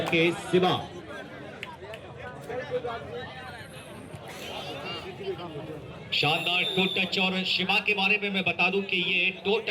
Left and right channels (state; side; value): identical; both; correlation 1.00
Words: के शिवा, शानदार टो टच। और शिवा के बारे में मैं बता दूं कि ये टो